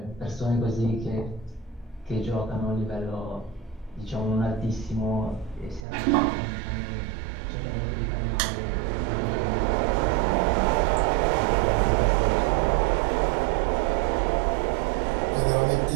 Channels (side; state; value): left; drops out; at 5.9 s